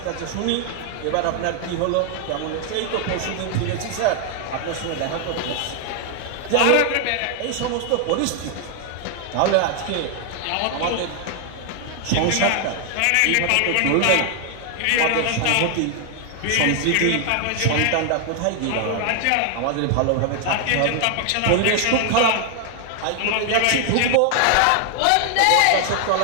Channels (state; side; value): different; both; correlation 0.00